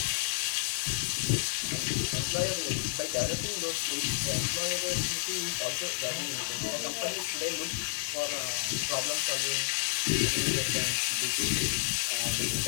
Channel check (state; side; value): silent; right; digital silence